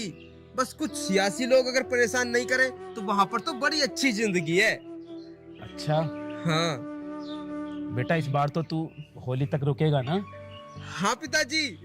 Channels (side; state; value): both; identical; correlation 1.00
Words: बस कुछ सियासी लोग अगर परेशान नहीं करें तो वहाँ पर तो बड़ी अच्छी जिंदगी है। अच्छा। हाँ बेटा इस बार तो तू होली तक रुकेगा ना? हाँ पिताजी,